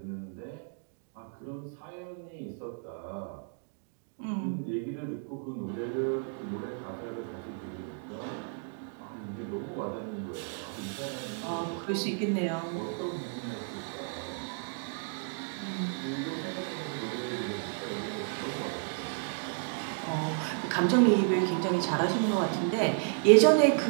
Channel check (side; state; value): left; silent; 56 dB below the other